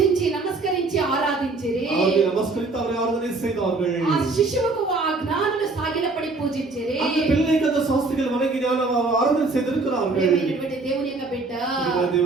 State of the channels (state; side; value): quieter; left; 3.5 dB